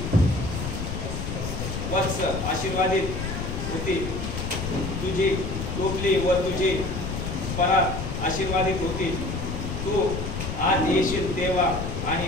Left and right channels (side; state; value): left; noise; rumble, 4 dB below the sound